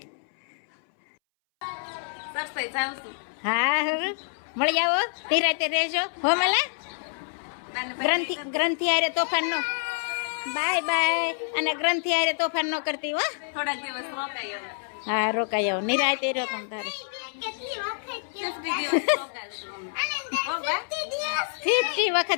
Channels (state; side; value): silent; right; 60 dB below the other